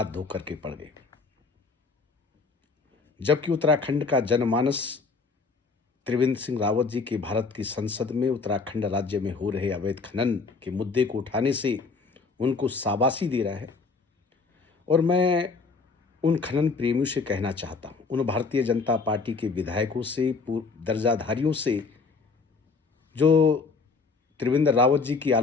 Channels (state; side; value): quieter; right; 4.5 dB